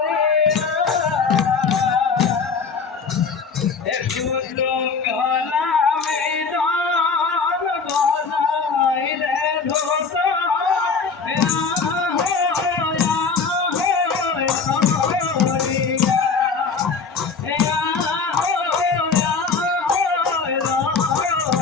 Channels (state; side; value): quieter; right; 5.1 dB